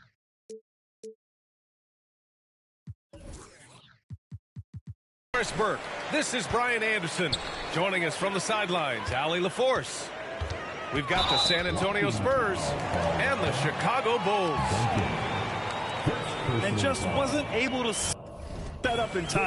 Burke. This is Brian Anderson. Joining us from the sidelines, Allie LaForce. We've got the San Antonio Spurs and the Chicago Bulls. And just wasn't able to set up in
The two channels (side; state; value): both; identical; correlation 1.00